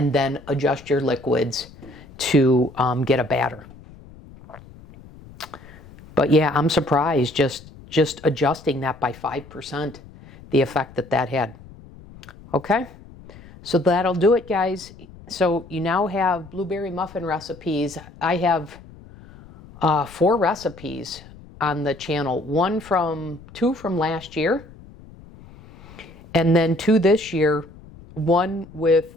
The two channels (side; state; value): left; noise; rumble, 20 dB below the sound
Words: then adjust your liquids to get a batter. But yeah, I'm surprised just adjusting that by 5%, the effect that had. Okay, so that'll do it, guys. So you now have blueberry muffin recipes. I have 4 recipes on the channel. 2 from last year, and then 2 this year. 1 with